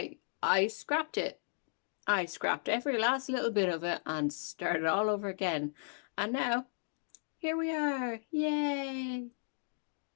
scrapped it. I scrapped every last little bit of it and started all over again. And now, here we are. Yay!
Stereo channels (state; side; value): silent; right; digital silence